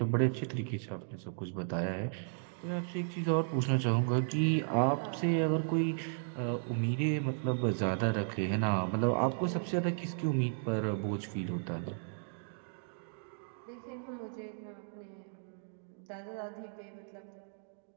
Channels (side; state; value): left; silent; digital silence